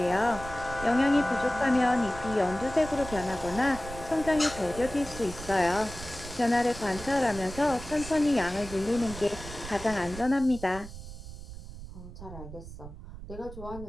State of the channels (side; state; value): right; noise; rumble, 12 dB below the sound